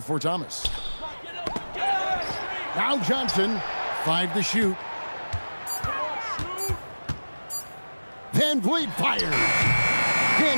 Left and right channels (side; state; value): both; inverted; correlation -1.00